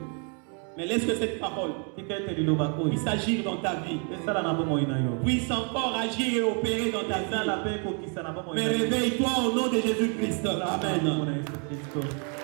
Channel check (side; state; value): left; quieter; 39.9 dB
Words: Mais laisse que cette parole tika ete liloba oyo puisse agir dans ta vie, esala na bomoi na yo puisse encore agir et opérer dans ta esala vie. mpe ekokisa na bomoi Mais na yo réveille-toi au nom de Jésus-Christ. Amen. Kombo na Yesu